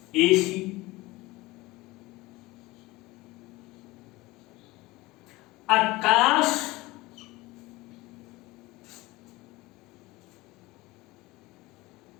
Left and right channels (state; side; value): quieter; right; 20.6 dB